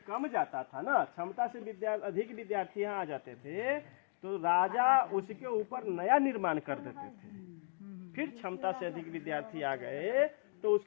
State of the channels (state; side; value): silent; right; 53 dB below the other